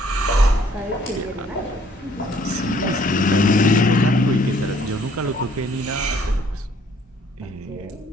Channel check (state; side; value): normal; both; correlation 0.62